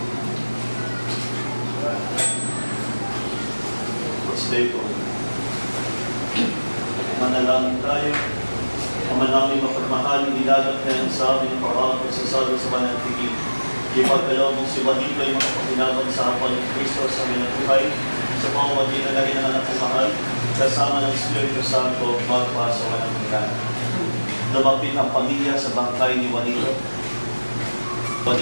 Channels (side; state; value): both; inverted; correlation -1.00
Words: Manalangin tayo. Ama namin mapagmahal, inilagat kayo sa amin ang parang pagsasabi sa banal na tigil. Ipagkalaw mong si Juanito ay makapaginaban sa hapon ng Kristo sa aming buhay, sa pamamagitan na rin ng anak ng mahal, kasama ng Espiritu Santo, magpa sa walang hanggan. Lumapit ang pamilya sa bangkay ni Juanito.